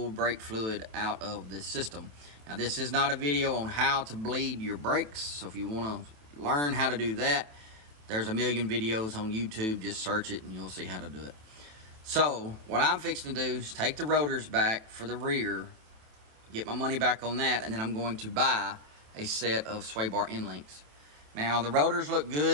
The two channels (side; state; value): left; late; 27 ms